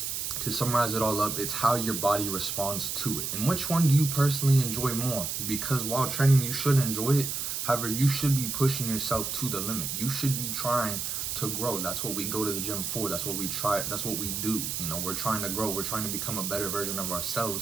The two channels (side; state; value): right; noise; hiss, 3 dB below the sound